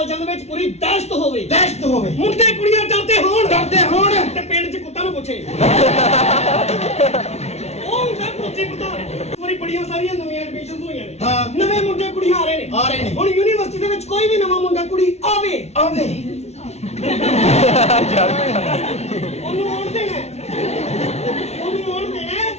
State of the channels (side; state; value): right; late; 0.31 ms